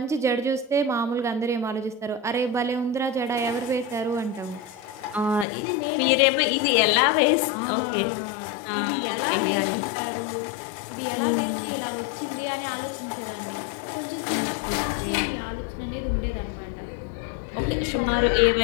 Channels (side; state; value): right; drops out; at 5.5 s